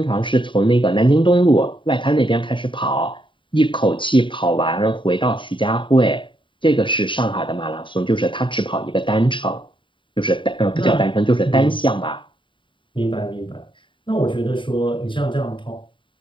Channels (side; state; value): right; late; 0.24 ms